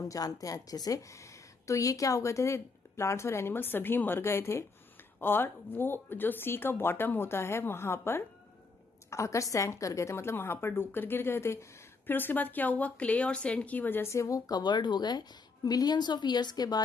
जानते हैं अच्छे से। तो ये क्या हो गए थे? प्लांट्स और एनिमल्स सभी मर गए थे, और वो जो सी का बॉटम होता है वहां पर आकर सैंक कर गए थे, मतलब वहां पर डूब कर गिर गए थे। फिर उसके बाद क्या हुआ? क्ले और सैंड की वजह से वो कवर्ड हो गए। मिलियंस ऑफ ईयर्स के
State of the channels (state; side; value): quieter; right; 4.3 dB